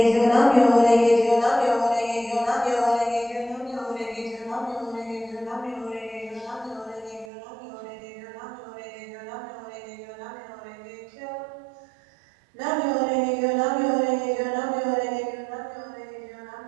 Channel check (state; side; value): drops out; left; at 7.2 s